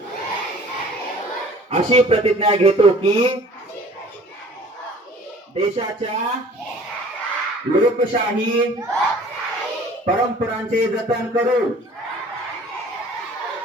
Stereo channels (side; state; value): both; normal; correlation 0.49